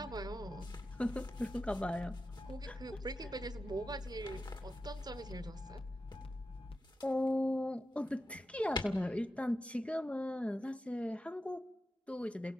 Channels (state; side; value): normal; both; correlation 0.90